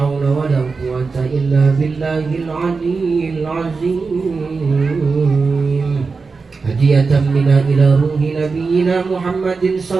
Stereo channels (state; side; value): quieter; left; 4.5 dB